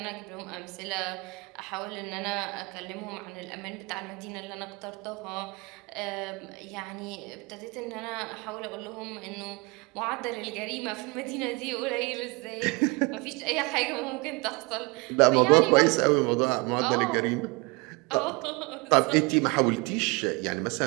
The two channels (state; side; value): quieter; left; 27.6 dB